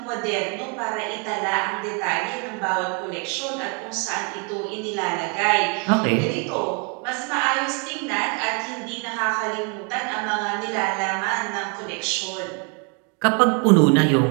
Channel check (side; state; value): left; quieter; 36.3 dB